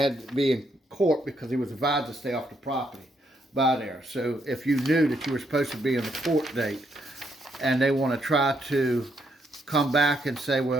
to be in court because he was advised to stay off the property by there. So if you knew that you were supposed to be in the court date and they want to try to come back and say,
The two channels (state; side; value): normal; both; correlation 0.76